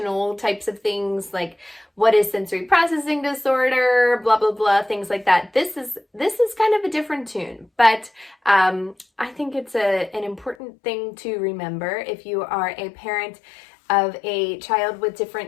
types of things, like what is sensory processing disorder, blah, blah, blah, things like that. This is kind of a different tune, but I think it's an important thing to remember if you are a parent of a child with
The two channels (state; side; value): drops out; right; at 10.6 s